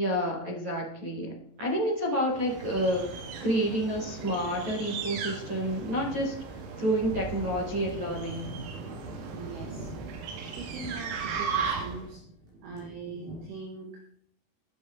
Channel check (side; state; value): left; late; 18 ms